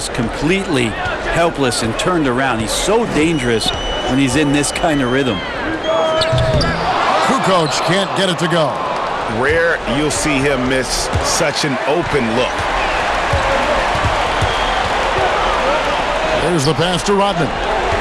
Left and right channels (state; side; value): identical; both; correlation 1.00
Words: completely helpless and turned around. He's so dangerous when he's in this kind of rhythm. Kukoc can't get it to go. Rare you'll see him miss such an open look. There's the pass to Rodman.